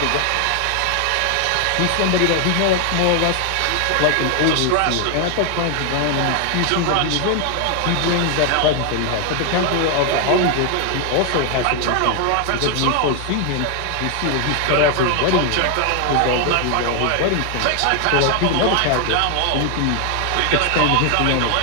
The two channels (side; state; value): both; different; correlation 0.00